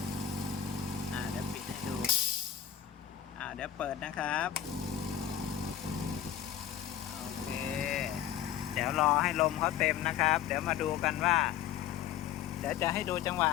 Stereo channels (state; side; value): quieter; right; 10.3 dB